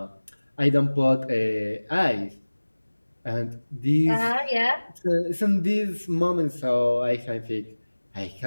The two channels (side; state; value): both; inverted; correlation -1.00